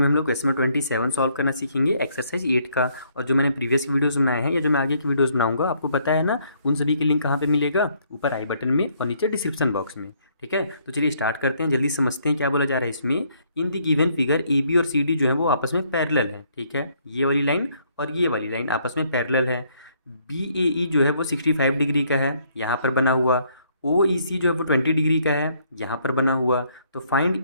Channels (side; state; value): both; inverted; correlation -0.68